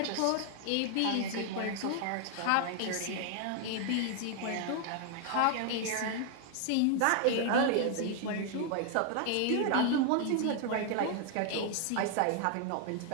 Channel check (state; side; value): different; both; correlation 0.00